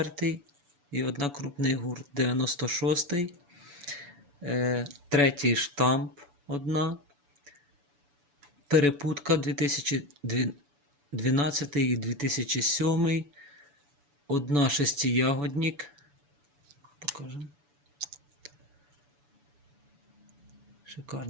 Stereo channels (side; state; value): left; late; 7.0 ms